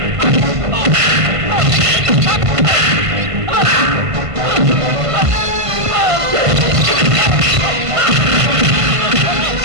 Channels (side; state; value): left; late; 1.5 ms